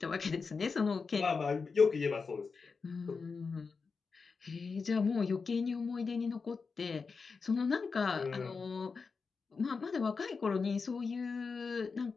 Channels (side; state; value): right; quieter; 4.9 dB